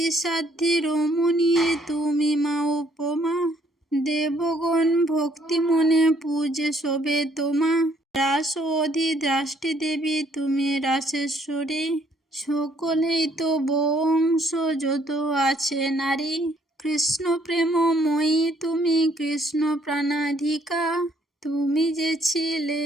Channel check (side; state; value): both; normal; correlation 0.66